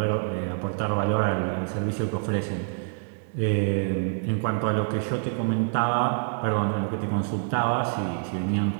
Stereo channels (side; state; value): left; silent; 61 dB below the other